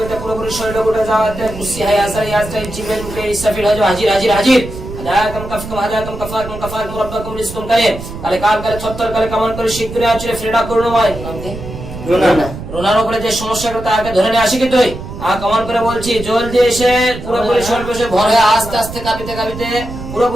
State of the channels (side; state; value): right; noise; rumble, 11 dB below the sound